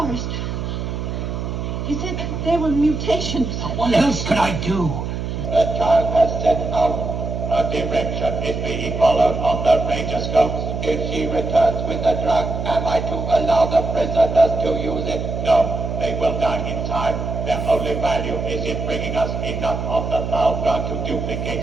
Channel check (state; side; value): noise; right; hum, 4 dB below the sound